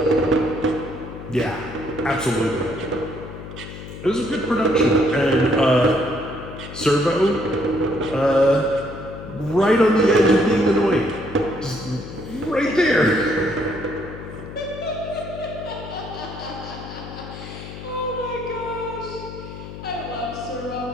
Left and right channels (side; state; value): left; noise; hum, 12 dB below the sound